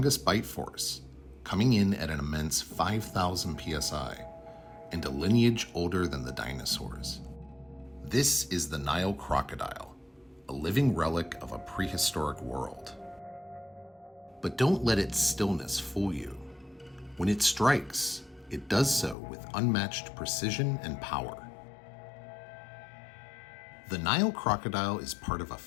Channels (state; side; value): drops out; right; at 19.2 s